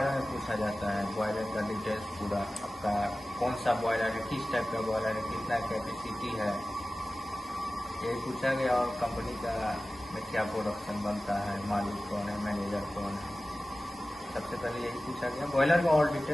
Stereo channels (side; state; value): both; normal; correlation 0.96